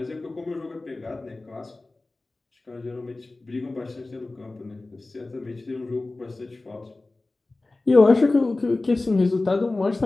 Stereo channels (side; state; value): right; quieter; 3.1 dB